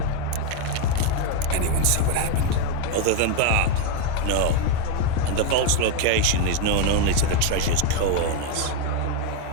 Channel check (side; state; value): both; different; correlation 0.02